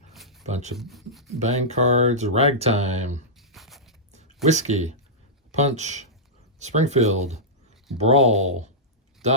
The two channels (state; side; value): normal; both; correlation -0.12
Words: bunch of bang cards, Ragtime, Whiskey, Punch, Springfield, Brawl,